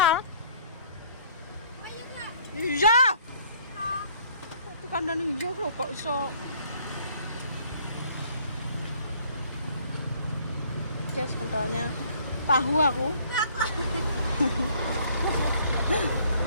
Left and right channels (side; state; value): both; inverted; correlation -0.59